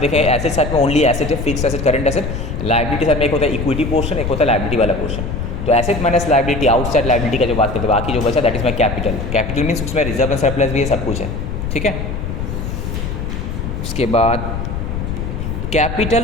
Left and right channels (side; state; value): left; noise; rumble, 4 dB below the sound